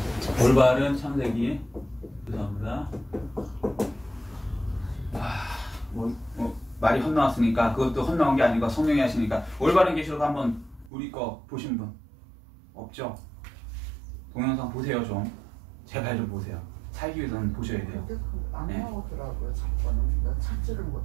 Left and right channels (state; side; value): drops out; left; at 10.9 s